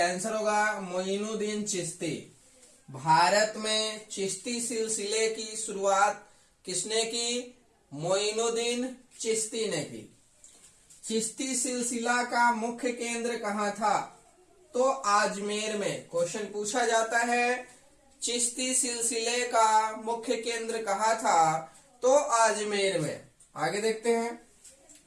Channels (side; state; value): both; identical; correlation 1.00